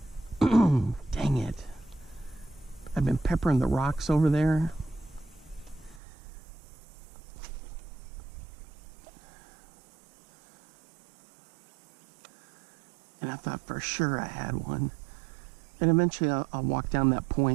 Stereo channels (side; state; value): left; drops out; at 6.0 s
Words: Dang it. I've been peppering the rocks over there. And I thought for sure I had one. And eventually I'll walk down that